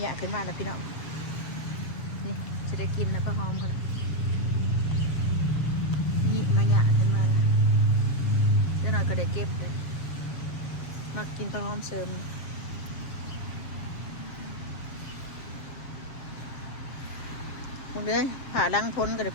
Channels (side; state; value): right; late; 7.4 ms